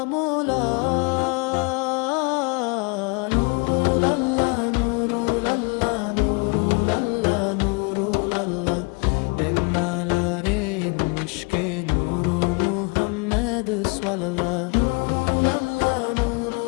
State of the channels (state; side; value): quieter; right; 30.9 dB